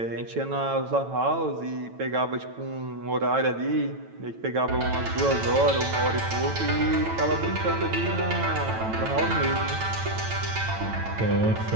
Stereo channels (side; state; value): left; late; 9.0 ms